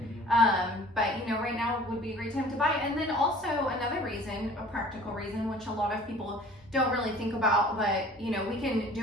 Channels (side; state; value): both; normal; correlation 0.48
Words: But you know, right now would be a great time to buy. And then also another reason, a practical reason, which a lot of people don't really think about, but you know, we can